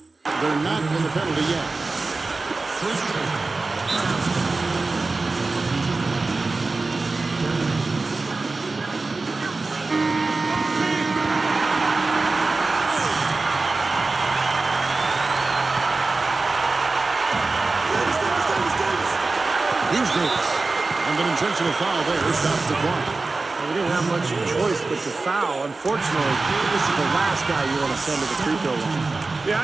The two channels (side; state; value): left; quieter; 3.6 dB